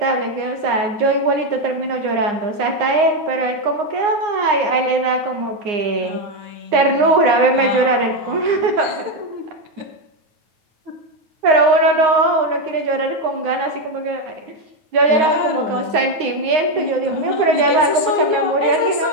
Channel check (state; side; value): late; left; 9.7 ms